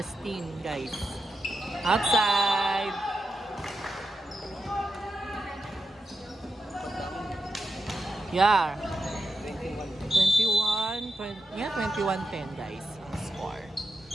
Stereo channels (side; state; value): both; normal; correlation 0.87